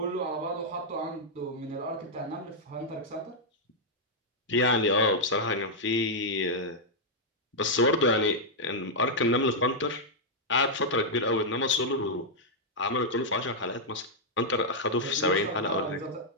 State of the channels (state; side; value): normal; both; correlation -0.05